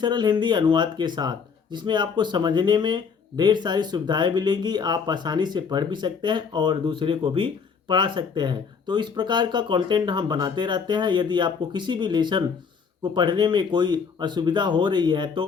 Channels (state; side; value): quieter; right; 5.9 dB